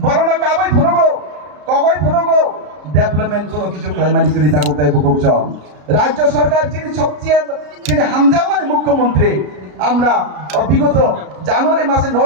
বড় না কাবাই ফুনগো কগই ফুনগো ডেভেলপমেন্ট কোনো কিছু ক্লাইমানি করি তা করতে বুকছ রাজ্য সরকার যিনি হামজামানি মুখ্যমন্ত্রী আমরা বিগত জানুয়ারি মাসের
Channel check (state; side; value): late; left; 33 ms